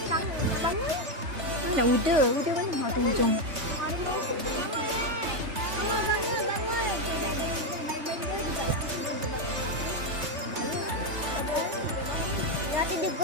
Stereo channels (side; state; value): left; late; 3.3 ms